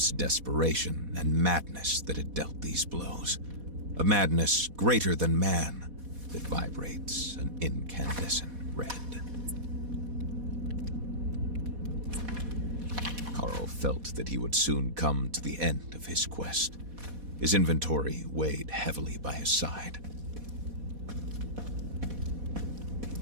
desperation and madness that had dealt these blows. A madness greater than man that vibrates an incandescent red. Carl felt that he would soon come to the end of his quest. His inventory weighed heavily by his side.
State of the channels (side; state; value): left; late; 4.1 ms